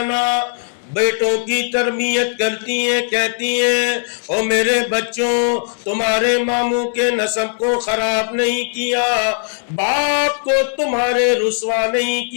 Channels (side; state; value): right; silent; digital silence